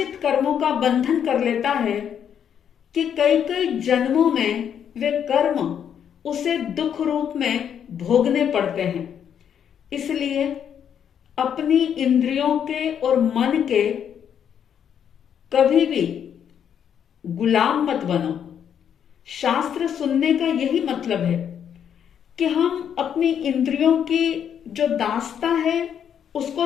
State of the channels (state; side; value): quieter; right; 8.6 dB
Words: कर्मों का बंधन कर लेता है कि कई कई जन्मों में वे कर्म उसे दुख रूप में भोगने पड़ते हैं। इसलिए अपनी इंद्रियों के और मन के कभी भी गुलाम मत बनो। शास्त्र सुनने का यही मतलब है कि हम अपनी इंद्रियों की जो दासता है उसको